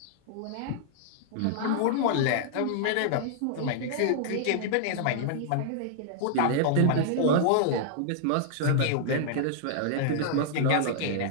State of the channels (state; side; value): different; both; correlation -0.01